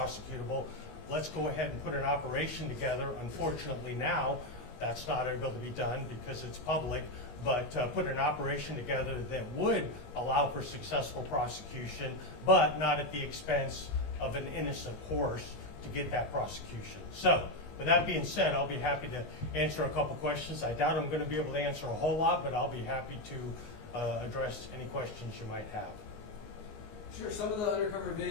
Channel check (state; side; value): late; right; 19 ms